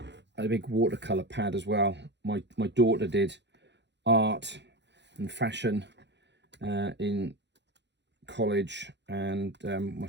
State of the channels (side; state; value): left; late; 0.51 ms